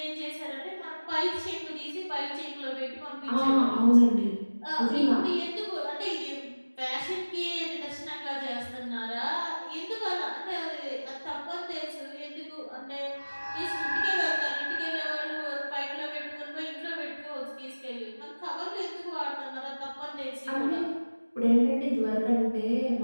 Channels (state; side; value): inverted; both; correlation -1.00